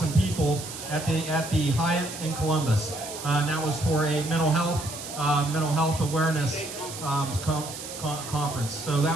people at the Hyatt in Columbus. And that was for a mental health awareness conference. So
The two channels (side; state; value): right; noise; hiss, 10 dB below the sound